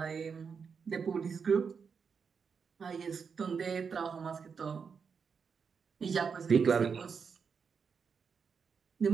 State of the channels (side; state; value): left; quieter; 6.0 dB